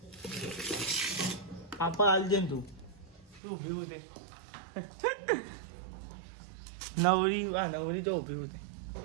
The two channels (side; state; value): left; drops out; at 3.4 s